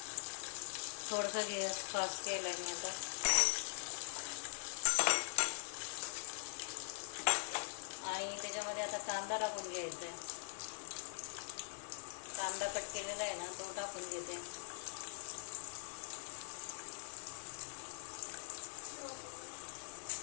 थोडंसं गॅस फास्ट केला मी आता. आणि त्याच्यामध्ये आता कांदा टाकून घ्यायचा आहे, कांदा कट केलेला आहे ना तो टाकून घेते.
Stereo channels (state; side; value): silent; right; digital silence